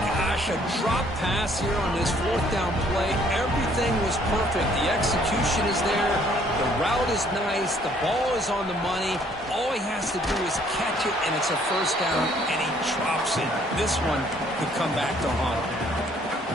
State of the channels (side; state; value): both; normal; correlation 0.62